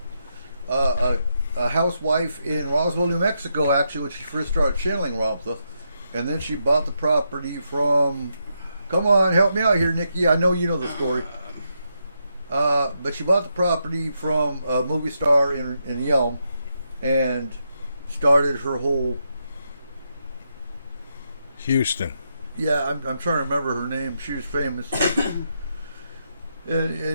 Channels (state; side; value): inverted; both; correlation -0.82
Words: housewife in Roswell, New Mexico, actually, when she first started channeling Ramtha. And then she bought the property from, come on, help me out here, Nikki. I know you know the story. But she bought the property from a movie star in Yelm and started her whole. Houston. Yeah, I'm trying to remember her name. She was famous.